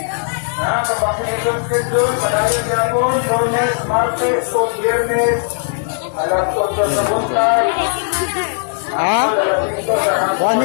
Vaccination schedule. Padayon gapon, Lunes, Martes, o Biyernes. Alas 8 sa buntag. Ah? Kuha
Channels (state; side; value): silent; right; digital silence